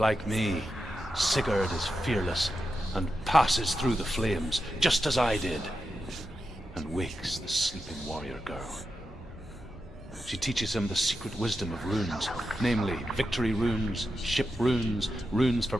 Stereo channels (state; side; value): normal; both; correlation 0.89